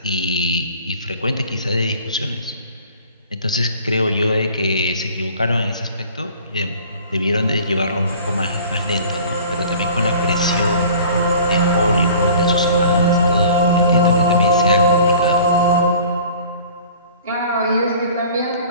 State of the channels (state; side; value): inverted; both; correlation -0.47